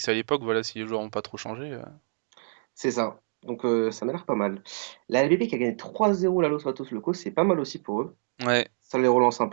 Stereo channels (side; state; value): left; silent; digital silence